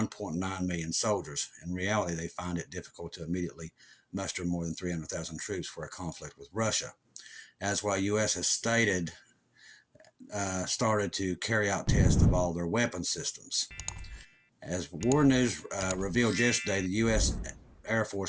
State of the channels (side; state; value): both; identical; correlation 1.00